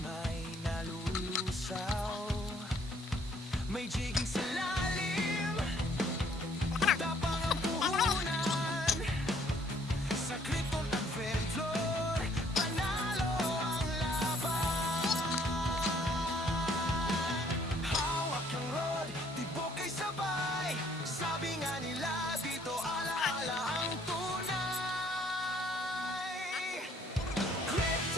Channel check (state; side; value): normal; both; correlation 0.63